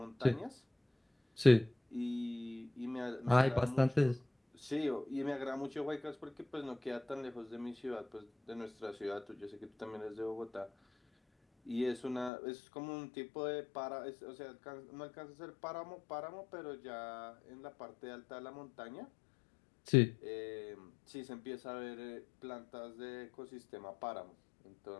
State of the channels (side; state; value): right; drops out; at 12.3 s